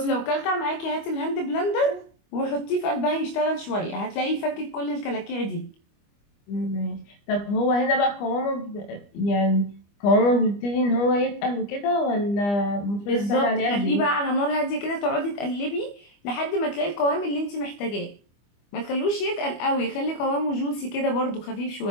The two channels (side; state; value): right; late; 25 ms